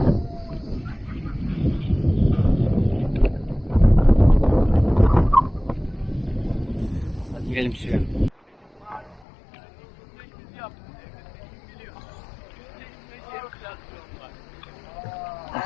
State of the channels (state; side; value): drops out; right; at 9.2 s